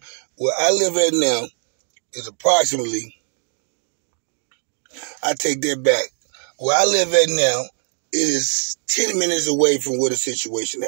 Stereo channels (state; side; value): silent; left; digital silence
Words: I live at now is approximately, I take that back. Where I live at now, it is 10 minutes away from where the situation